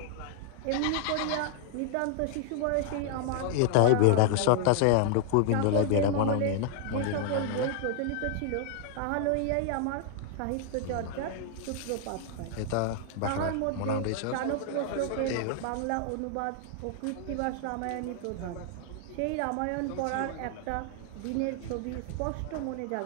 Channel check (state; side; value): different; both; correlation 0.00